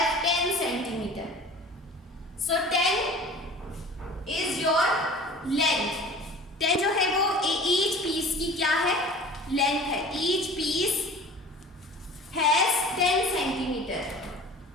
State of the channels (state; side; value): normal; both; correlation 0.42